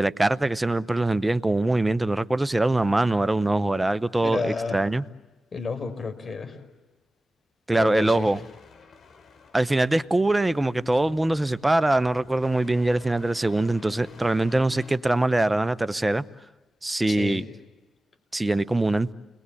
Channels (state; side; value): normal; both; correlation 0.97